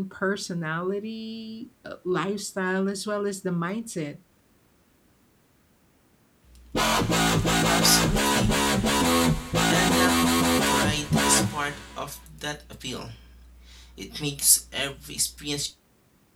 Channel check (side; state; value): both; identical; correlation 1.00